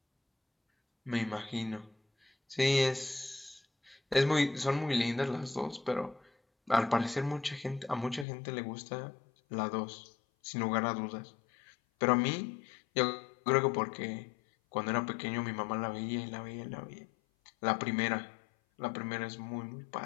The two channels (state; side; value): drops out; right; at 8.2 s